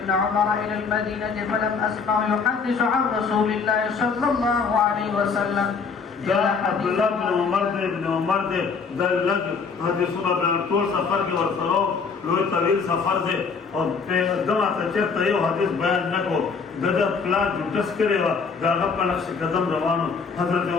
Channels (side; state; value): right; quieter; 5.3 dB